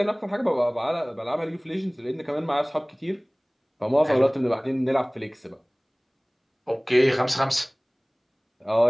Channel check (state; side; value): identical; both; correlation 1.00